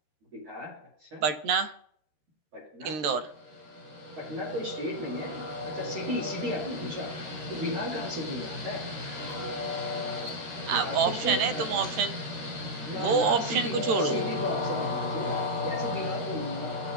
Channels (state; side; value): late; left; 13 ms